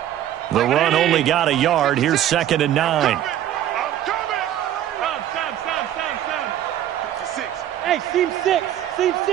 The run only got a yard. Here's 2nd and 9. I'm coming. Hey, seam 6. Seam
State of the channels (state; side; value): quieter; left; 11.6 dB